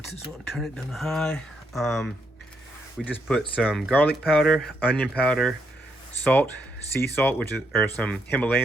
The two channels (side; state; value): both; normal; correlation 0.78